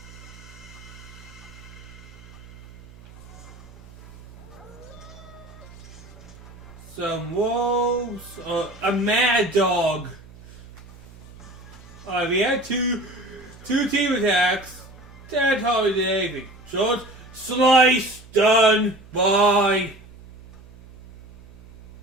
Some wolves, a mad dog. Alright, we had two team attacks. That hardly did anything. Short, slice, done, bye.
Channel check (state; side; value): noise; right; hum, 20 dB below the sound